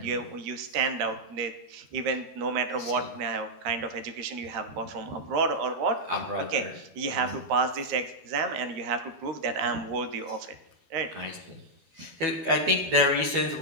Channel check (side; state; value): left; late; 12 ms